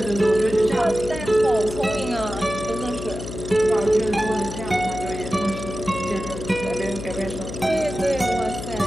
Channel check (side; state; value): left; noise; hum, 9 dB below the sound